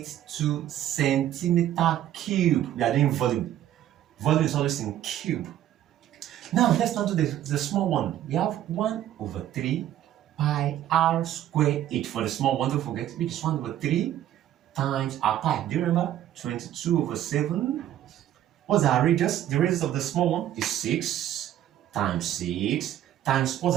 centimeter cube. We are doing volume. Volume is always in cube. Now let's now do the small one. We have 1 over 3 pi r square h for the small one, don't forget, which is 1 over 3 times our pi. Do you remember? 22 over 7. What's our radius? The radius of the small one is 6 times 6 times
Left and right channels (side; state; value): left; quieter; 12.1 dB